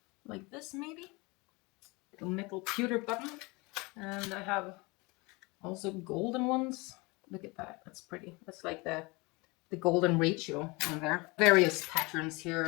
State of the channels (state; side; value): quieter; right; 26.1 dB